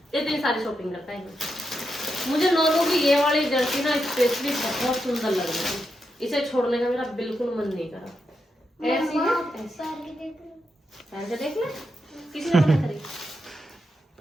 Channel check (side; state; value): both; normal; correlation 0.85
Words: इतनी सारी शॉपिंग करता है। मुझे नोनू की ये वाली जर्सी ना स्पेशली बहुत सुंदर लग रही है, इसे छोड़ने का मेरा बिल्कुल मन नहीं करा। ऐसी है, ऐसी पहन के देख लो। पहन के देख ले। किसी ने मना करी?